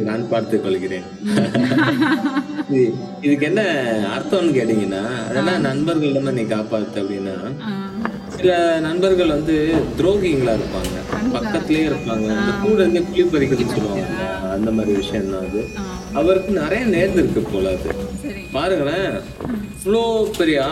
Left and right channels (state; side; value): identical; both; correlation 1.00